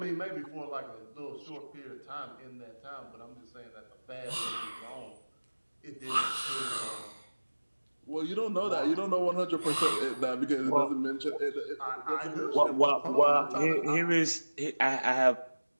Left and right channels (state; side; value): inverted; both; correlation -1.00